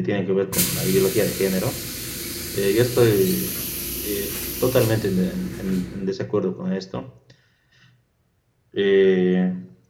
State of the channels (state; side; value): identical; both; correlation 1.00